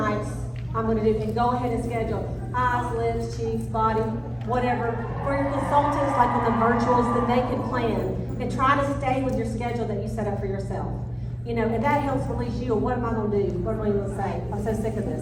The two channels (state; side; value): identical; both; correlation 1.00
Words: I'm gonna do, and go ahead and schedule eyes, lips, cheeks, body, whatever. For your consultants, like on the virtuals, then they can plan and try to stay with your schedule that you set up for yourself. You know, and that helps release you. What am I gonna do? What am I gonna say? I'm so sick of